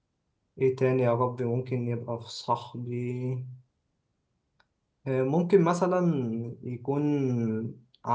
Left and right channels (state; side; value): identical; both; correlation 1.00